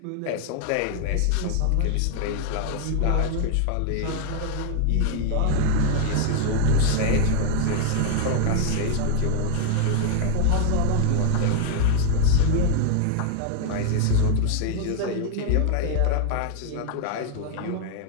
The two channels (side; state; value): both; different; correlation 0.00